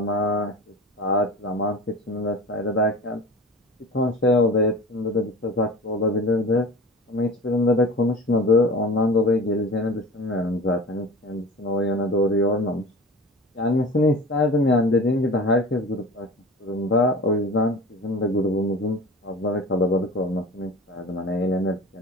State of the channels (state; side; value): normal; both; correlation 0.36